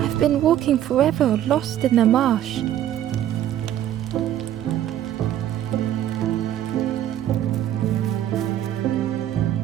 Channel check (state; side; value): quieter; left; 11.7 dB